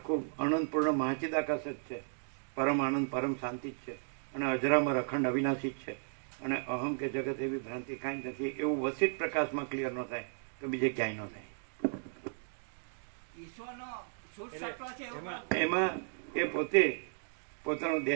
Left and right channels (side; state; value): left; silent; digital silence